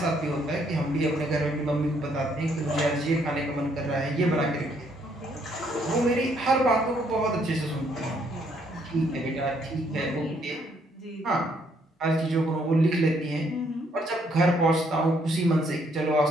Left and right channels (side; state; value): both; normal; correlation 0.69